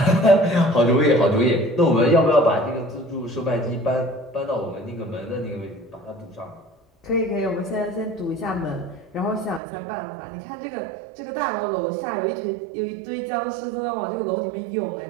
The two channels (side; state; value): left; drops out; at 9.6 s